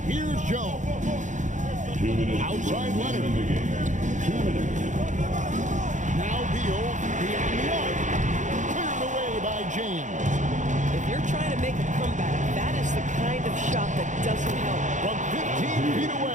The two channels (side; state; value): left; late; 0.36 ms